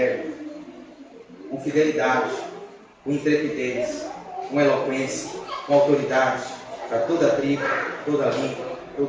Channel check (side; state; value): both; identical; correlation 1.00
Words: com fidelidade, com intrepidez, com eloquência, com autoridade, para toda tribo, toda língua,